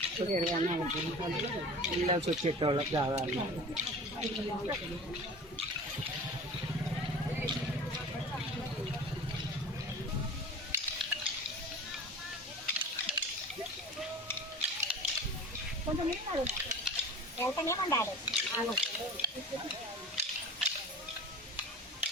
వెళ్ళాల్సి వచ్చేటోళ్ళకి కావాలి. కొంచెం వెళ్తానే ఉండాలి.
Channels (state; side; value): normal; both; correlation 0.38